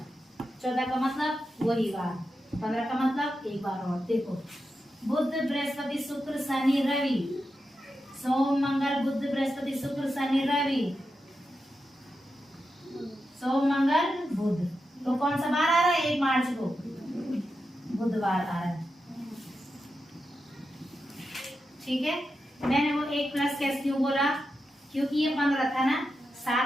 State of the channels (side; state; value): both; normal; correlation 0.88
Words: 14 का मतलब वही बार, 15 का मतलब एक बार और। देखो, बुध बृहस्पति शुक्र शनि रवि, सोम मंगल बुध बृहस्पति शुक्र शनि रवि, सोम मंगल बुध। तो कौन सा बार आ रहा है? 1 मार्च को बुधवार आ रहा है। ठीक है, मैंने वो 1 प्लस कैसे क्यों बोला? क्योंकि ये 15 था ना,